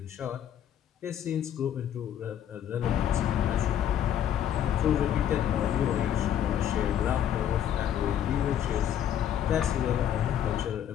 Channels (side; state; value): right; quieter; 10.0 dB